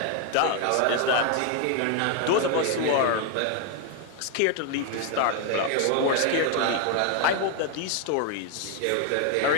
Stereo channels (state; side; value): different; both; correlation 0.01